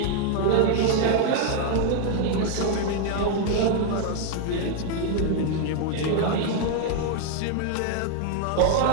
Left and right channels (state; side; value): different; both; correlation 0.00